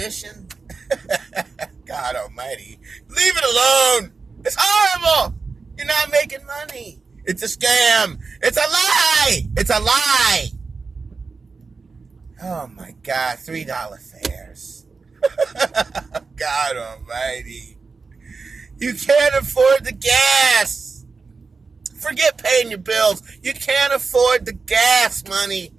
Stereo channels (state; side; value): quieter; left; 4.5 dB